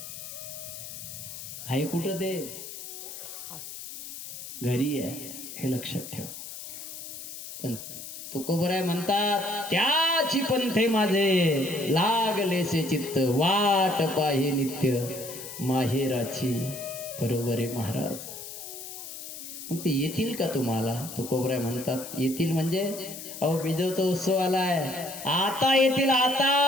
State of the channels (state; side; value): noise; left; hiss, 11 dB below the sound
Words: आहे कुठं ते? घरी आहे, हे लक्षात ठेव. पण तुकोबराय म्हणतात, त्याची पंथे माझे लागलेसे चित्त, वाट पाहे नित्य माहेराची. बरोबर आहे महाराज. मग ते येतील का तुम्हाला? तुकोबराय म्हणतात, येतील म्हणजे अहो बिजवचा उत्सव आलाय, आता येतील. आता